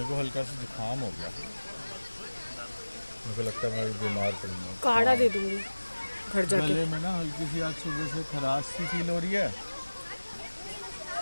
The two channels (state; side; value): inverted; both; correlation -1.00